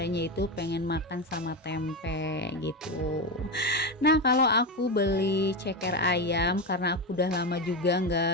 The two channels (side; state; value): both; normal; correlation 0.15